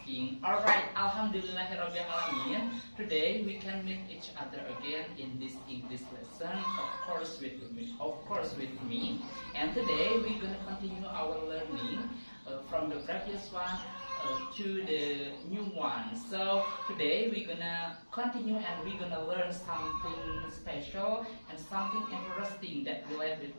Alright, Alhamdulillahirrahmanirrahim. Today we can meet each other again in this English lesson, of course with me. And today we're gonna continue our learning from the previous one to the new one. So today we're gonna continue and we're gonna learn something special and something interesting that relates with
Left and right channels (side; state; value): both; inverted; correlation -1.00